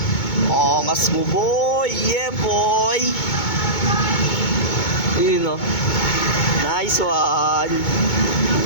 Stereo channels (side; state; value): right; late; 2.2 ms